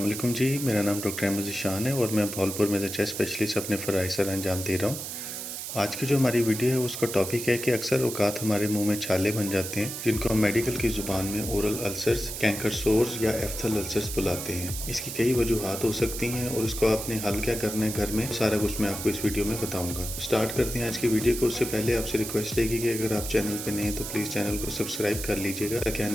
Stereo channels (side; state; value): right; noise; hiss, 7 dB below the sound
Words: वालेकुम जी। मेरा नाम डॉक्टर अहमद ज़ीशान है और मैं भावलपुर में चेस्ट स्पेशलिस्ट अपने फ़राइज़ सर अंजाम दे रहा हूँ। आज की जो हमारी वीडियो है उसका टॉपिक है कि अक्सर औक़ात हमारे मुंह में छाले बन जाते हैं, जिनको हम मेडिकल की ज़ुबान में ओरल अल्सर्स, कैंकर सोर्स या एफ्थल अल्सर्स बुलाते हैं। इसकी कई वजूहात हो सकती हैं और इसको आपने हल क्या करना है घर में, सारा कुछ मैं आपको इस वीडियो में बताऊँगा। स्टार्ट करते हैं आज की वीडियो को। उससे पहले आपसे रिक्वेस्ट रहेगी कि अगर आप चैनल पर नए हैं तो प्लीज़ चैनल को सब्सक्राइब कर लीजिएगा ताकि